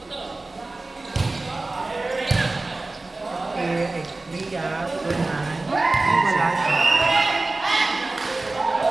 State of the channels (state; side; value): quieter; left; 3.2 dB